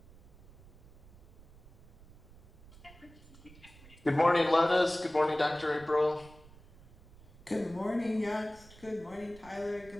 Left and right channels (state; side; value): noise; right; rumble, 22 dB below the sound